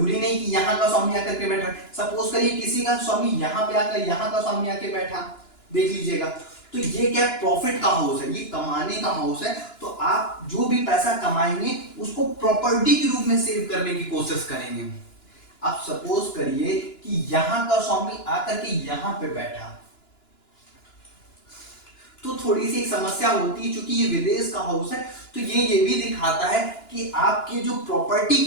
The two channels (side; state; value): right; late; 2.9 ms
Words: नहीं कि यहाँ का स्वामी आकर के बैठा, सपोज करिए किसी का स्वामी यहाँ पे आकर यहाँ का स्वामी आके बैठा, देख लीजिएगा, तो ये क्या है, प्रॉफिट का हाउस है, ये कमाने का हाउस है। तो आप जो भी पैसा कमाएंगे उसको प्रॉपर्टी के रूप में सेव करने की कोशिश करेंगे। आप सपोज करिए कि यहां का स्वामी आकर के यहां पे बैठा, तो थोड़ी सी एक समस्या होती है, क्योंकि ये विदेश का हाउस है, तो ये भी दिखाता है कि आपके जो प्रॉपर्टी